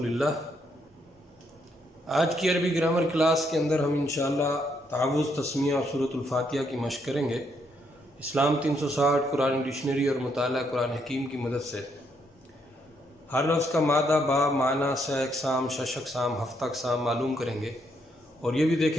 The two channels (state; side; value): normal; both; correlation 0.74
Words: اللہ۔ آج کی عربی گرامر کلاس کے اندر ہم انشاءاللہ تعوذ، تسمیہ اور سورۃ الفاتحہ کی مشق کریں گے اسلام 360 قرآن ڈکشنری اور مطالعہ قرآن حکیم کی مدد سے۔ ہر لفظ کا مادہ، باب، معنی، سہ اقسام، شش اقسام، ہفتہ اقسام معلوم کریں گے، اور یہ بھی